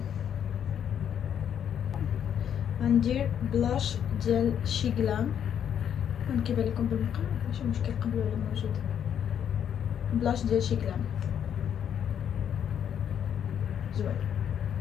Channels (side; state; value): right; quieter; 8.9 dB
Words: غندير بلاش ديال شي غلام، كيبان لكم بالمقلب ماشي مشكل، قبلوا ولا موجود. بلاش ديال شي غلام زوين.